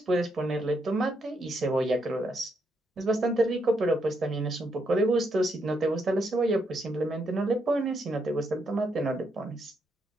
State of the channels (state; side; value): normal; both; correlation 0.78